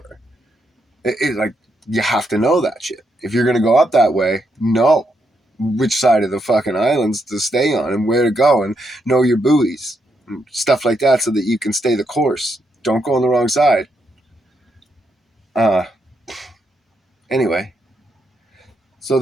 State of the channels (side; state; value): both; normal; correlation 0.79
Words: Like, you have to know that shit. If you're going to go up that way, know which side of the fucking islands to stay on and where to go, and know your buoys and stuff like that so that you can stay the course. Don't go on the wrong side. Anyway, so